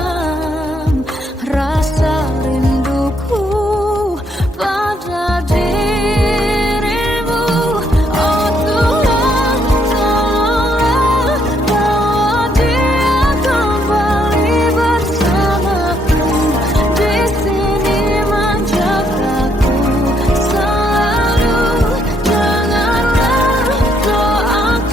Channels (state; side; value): normal; both; correlation 0.72